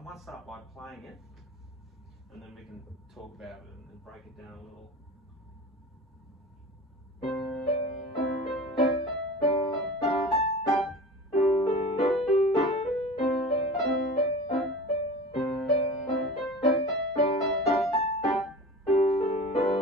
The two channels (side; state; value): both; normal; correlation 0.35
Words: might start by playing it, and then we can talk about it and break it down a little.